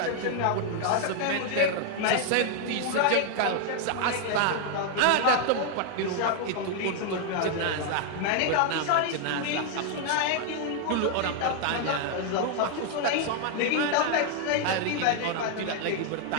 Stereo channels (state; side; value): different; both; correlation 0.00